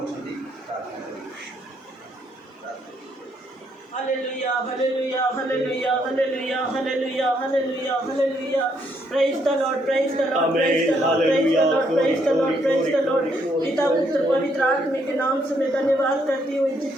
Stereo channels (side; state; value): both; normal; correlation 0.73